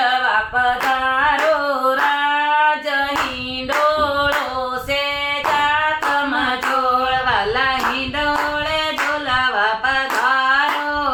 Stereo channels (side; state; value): both; identical; correlation 1.00